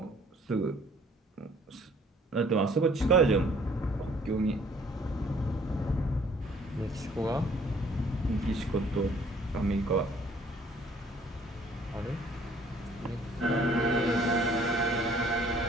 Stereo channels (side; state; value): both; normal; correlation 0.58